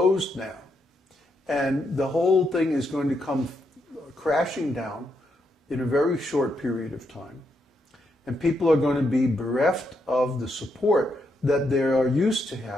now. And the whole thing is going to come crashing down in a very short period of time. And people are going to be bereft of the support that they are used to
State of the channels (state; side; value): normal; both; correlation 0.80